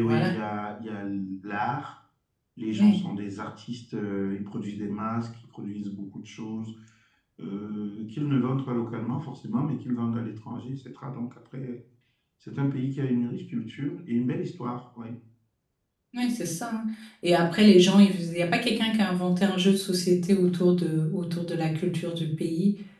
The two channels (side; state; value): both; identical; correlation 1.00